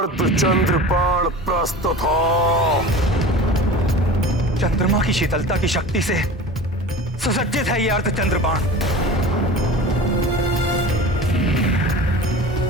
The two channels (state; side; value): normal; both; correlation 0.35